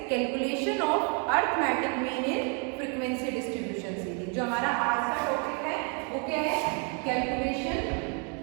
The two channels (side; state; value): left; quieter; 36.2 dB